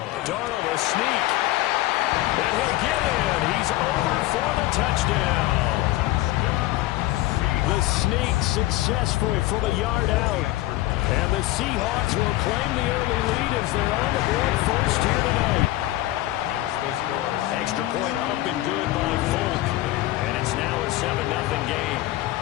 Darnold a sneak. And he'll get in. He's over for the touchdown. The sneak successful from a yard out. And the Seahawks will claim the early lead as they're on the board first here tonight. Extra point up and good by Folk. And it's now a 7-0 game.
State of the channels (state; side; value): quieter; right; 16.9 dB